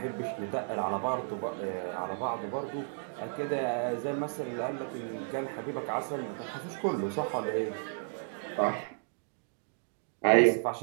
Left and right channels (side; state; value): left; silent; digital silence